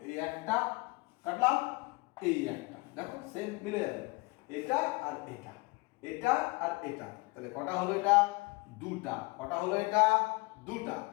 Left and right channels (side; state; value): right; quieter; 26.0 dB